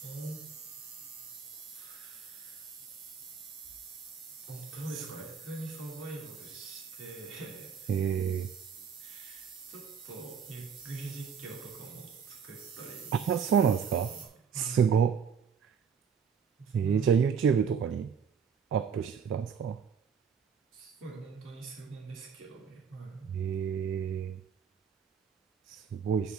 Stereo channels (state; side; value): quieter; left; 6.8 dB